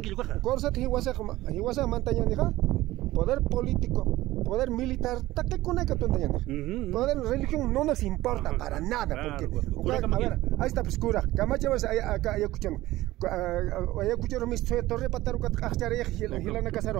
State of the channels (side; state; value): left; quieter; 17.0 dB